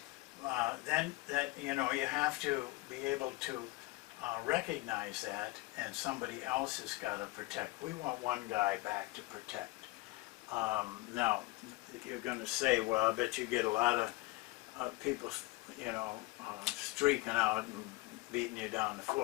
Then you have to be able to recognize that, and somebody else has got to protect. We want one guy back to protect. Now, you're going to say, well, I bet you get a lot of people, streaking out and beating you down the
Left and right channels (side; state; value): right; quieter; 21.5 dB